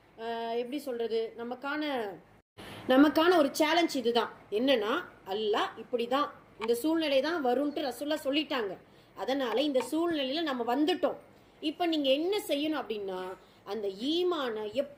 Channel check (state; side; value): identical; both; correlation 1.00